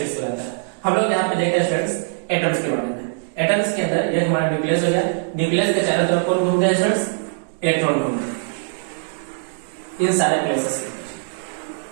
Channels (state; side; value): silent; left; digital silence